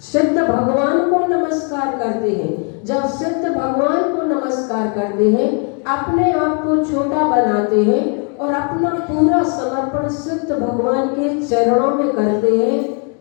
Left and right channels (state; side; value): quieter; right; 38.6 dB